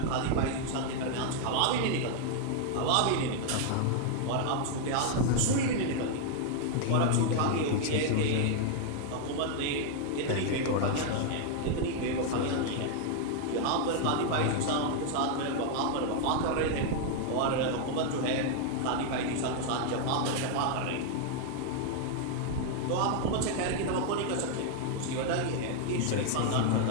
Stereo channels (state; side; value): different; both; correlation 0.00